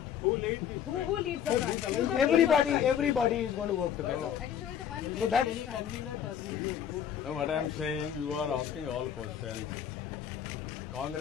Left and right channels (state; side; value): quieter; right; 9.0 dB